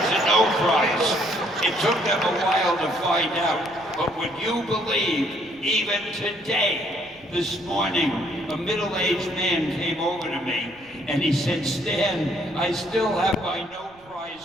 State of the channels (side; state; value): right; noise; rumble, 28 dB below the sound